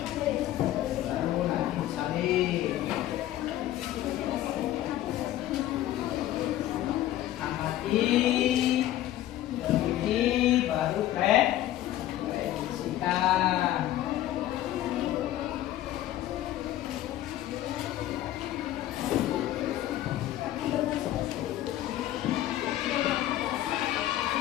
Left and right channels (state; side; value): quieter; right; 13.6 dB